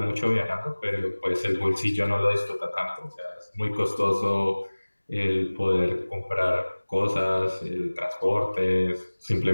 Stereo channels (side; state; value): both; inverted; correlation -1.00